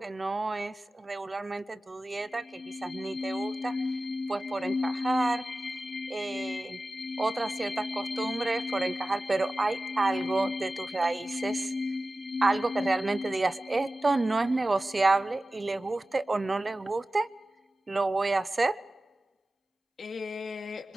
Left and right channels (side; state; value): both; normal; correlation 0.95